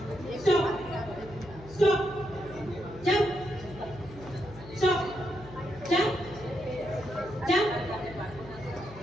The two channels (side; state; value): left; noise; hum, 17 dB below the sound